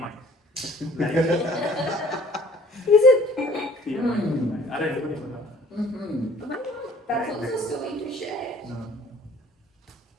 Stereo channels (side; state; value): both; normal; correlation 0.54